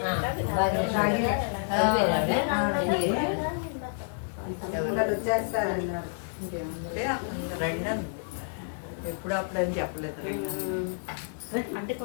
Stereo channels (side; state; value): right; silent; 58 dB below the other